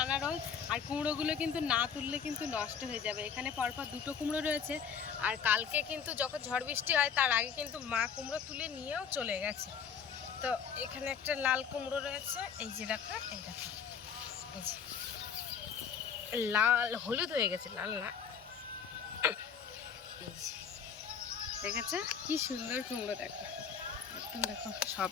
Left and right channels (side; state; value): right; quieter; 7.0 dB